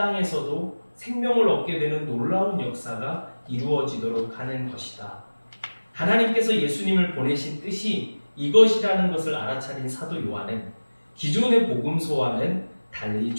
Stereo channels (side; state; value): both; inverted; correlation -1.00